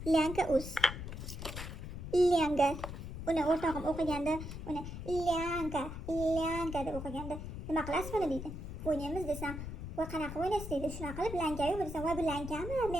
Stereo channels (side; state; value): left; noise; rumble, 8 dB below the sound